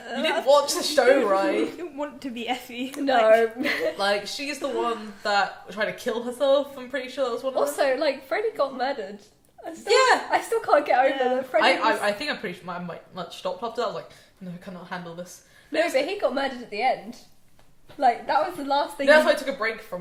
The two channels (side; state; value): both; identical; correlation 1.00